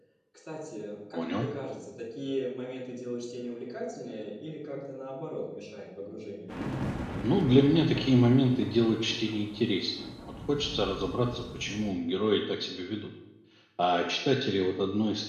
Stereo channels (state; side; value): identical; both; correlation 1.00